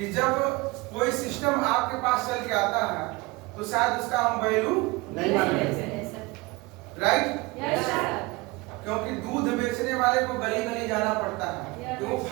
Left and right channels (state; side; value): quieter; left; 23.5 dB